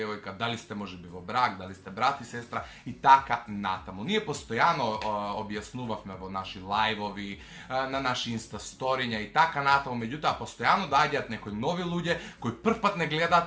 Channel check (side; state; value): both; identical; correlation 1.00